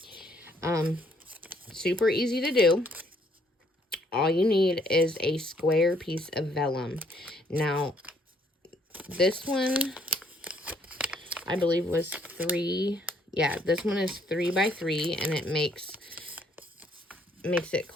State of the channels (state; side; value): normal; both; correlation 0.67